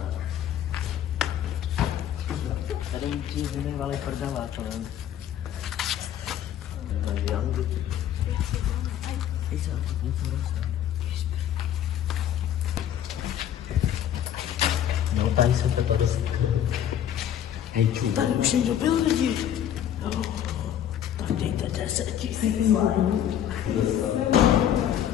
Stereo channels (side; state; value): right; quieter; 10.4 dB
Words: Tady ti vynechvali prdela, to nevím. No, tady jsem to padl. Tady už někdo byl lidi. No, tak dejte 10 000.